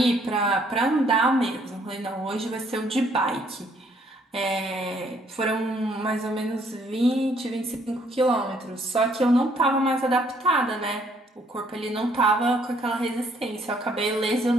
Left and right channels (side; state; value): both; normal; correlation 0.66